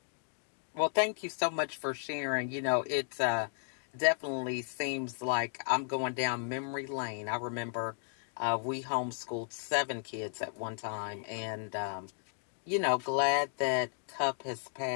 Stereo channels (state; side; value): silent; right; digital silence